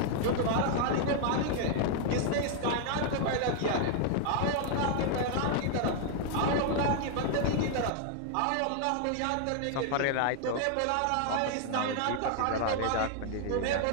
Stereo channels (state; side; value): different; both; correlation 0.00